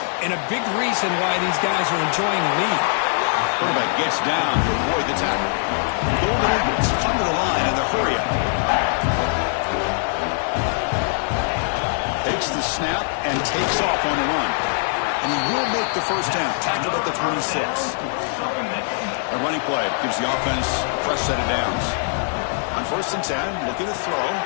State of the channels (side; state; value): right; silent; digital silence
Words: and a big reason why these guys are enjoying the lead. Quarterback gets down to avoid the tackle. Golden Eagles come to the line in the hurry up. Takes the snap and takes off on the run. And he will make the first down. Tackled at the 26. A running play gives the offense a fresh set of downs. On first and 10, looking to throw.